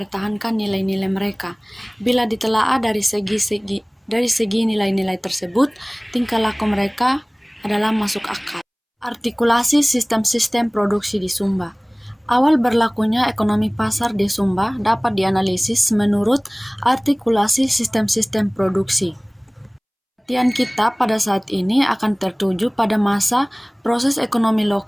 nilai-nilai mereka. Bila ditelaah dari segi nilai-nilai tersebut, tingkah laku mereka adalah masuk akal. Artikulasi sistem-sistem produksi di Sumba. Awal berlakunya ekonomi pasar di Sumba dapat dianalisis menurut artikulasi sistem-sistem produksi. Perhatian kita pada saat ini akan tertuju pada masa proses ekonomi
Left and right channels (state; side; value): identical; both; correlation 1.00